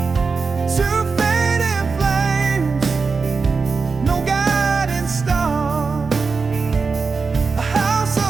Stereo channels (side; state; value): left; quieter; 4.7 dB